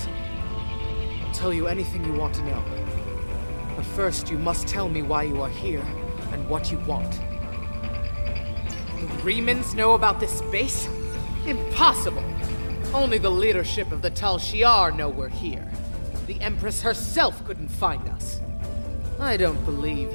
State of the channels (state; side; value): inverted; both; correlation -1.00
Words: I'll tell you anything you want to know. But first, you must tell me why you are here and what you want. The Remans know about this base? Impossible! Only the leadership of the Tal Shiar know we're here. The Empress herself couldn't find us. I don't believe